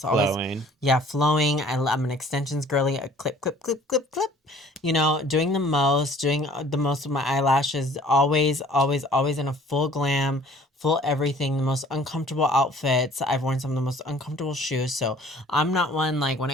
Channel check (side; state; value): both; normal; correlation 0.52